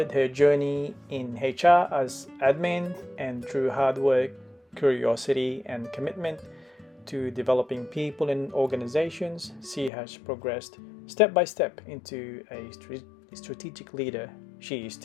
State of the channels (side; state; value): right; drops out; at 9.9 s